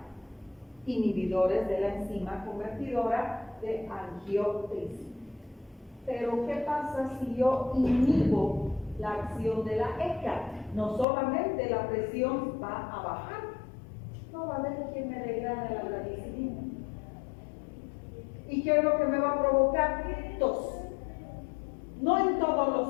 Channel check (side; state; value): right; drops out; at 11.1 s